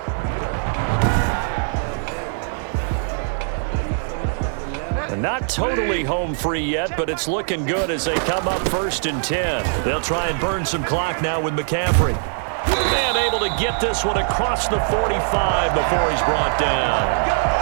Not totally home free yet, but it's looking good as they come up 1st and 10. They'll try and burn some clock now with McCaffrey. And able to get this one across the 45 before he's brought down.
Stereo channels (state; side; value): silent; left; digital silence